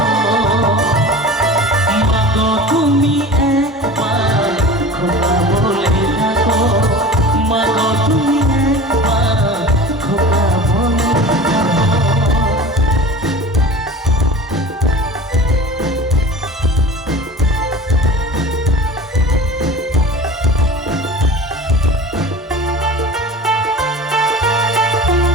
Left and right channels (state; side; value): normal; both; correlation 0.38